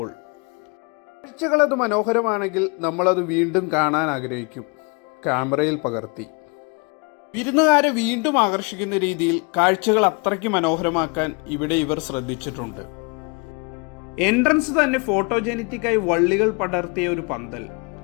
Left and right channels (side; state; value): right; quieter; 31.8 dB